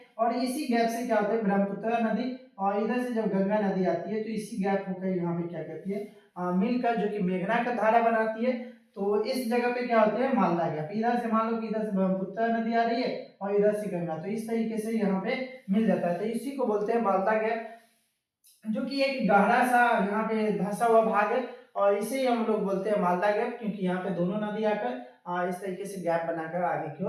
और इसी गैप से क्या होता है, ब्रह्मपुत्र नदी और इधर से जब गंगा नदी आती है तो इसी गैप होकर यहाँ पे क्या कहती है, मिलकर जो कि मेघना का धारा बनाती है। तो इस जगह पे क्या होते हैं, मालदा गैप। इधर से मान लो कि इधर से ब्रह्मपुत्र नदी आ रही है और इधर से गंगा, तो इस तरीके से यहाँ पे मिल जाता है, तो इसी को बोलते हैं मालदा गैप, जो कि एक गहरा सा यहाँ पे धंसा हुआ भाग है। और इसे हम लोग बोलते हैं मालदा गैप, क्योंकि यहाँ पे दोनों नदी आकर इस तरीके से गैप बनाकर आगे की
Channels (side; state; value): both; identical; correlation 1.00